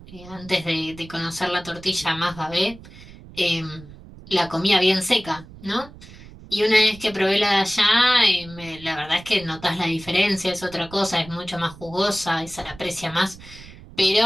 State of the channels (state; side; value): noise; right; rumble, 18 dB below the sound